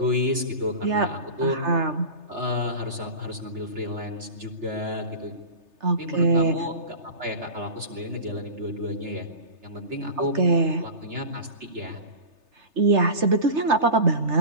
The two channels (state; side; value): late; left; 3.3 ms